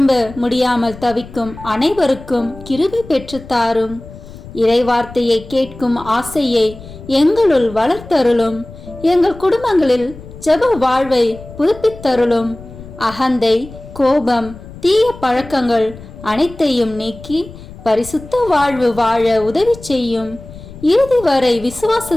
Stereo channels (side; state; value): left; noise; rumble, 16 dB below the sound